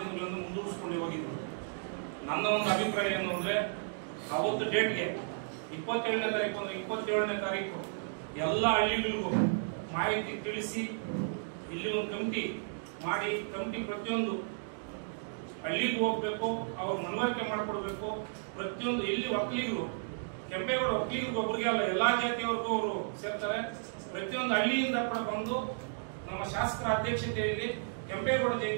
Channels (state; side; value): silent; left; digital silence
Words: ದಿನಗಳನ್ನು ಮುಂದೂಡಿಸ್ಕೊಂಡು ಹೋಗಿದ್ವಿ. ನನ್ನ ಒಂದು ಅಭಿಪ್ರಾಯ ಏನು ಅಂದ್ರೆ ಅವತ್ತು ಡೇಟ್ಗೆ 27ನೇ ತಾರೀಕು ಅಂದ್ರೆ 27ನೇ ತಾರೀಕು ಎಲ್ಲ ಹಳ್ಳಿಗಳಿಗೂ ಮಾಹಿತಿ ತಿಳಿಸಿ ಇಲ್ಲಿ ಒಂದು ಕಮಿಟಿ ಮಾಡಿ ಕಮಿಟಿ ಪ್ರತಿಯೊಂದು ಹಳ್ಳಿಗೂ ಹೋಗ್ಬೇಕು, ಅವ್ರ ಮನವರಿಕೆ ಮಾಡಿಕೊಡ್ಬೇಕು. ಪ್ರತಿಯೊಂದು ಎಲ್ಲಿ ಒಕ್ಕಲಿಗರು ಕೆಂಪೇಗೌಡ ಒಕ್ಕಲಿಗರಿಗೆ ಒಬ್ಬರಿಗೆ ಅಲ್ಲ ಎಲ್ಲಾ ಜಾತಿಯವರೆಗೂ ಅವರು ಸೇರ್ತಾರೆ. ಪ್ರತಿಯೊಂದು ಹಳ್ಳಿಯಿಂದ ಕೂಡ ಬಂದು ನಮ್ಮ ಶಾಸಕರ ಅಧ್ಯಕ್ಷತೆಯಲ್ಲಿ ಕೆಂಪೇಗೌಡ